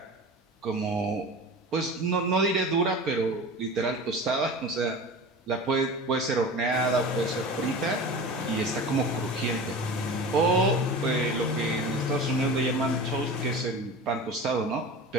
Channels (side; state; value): both; normal; correlation 0.34